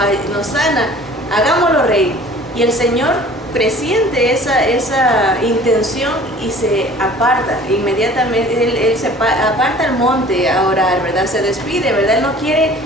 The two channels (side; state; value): both; normal; correlation 0.48